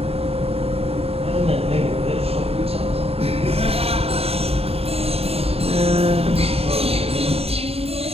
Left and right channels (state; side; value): late; left; 0.29 ms